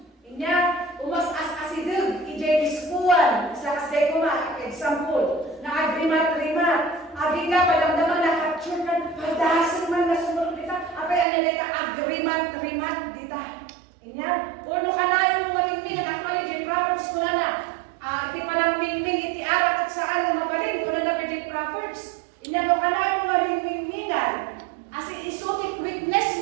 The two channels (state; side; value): drops out; left; at 11.2 s